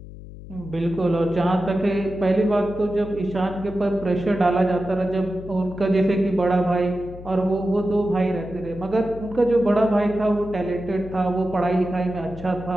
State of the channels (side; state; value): left; noise; hum, 15 dB below the sound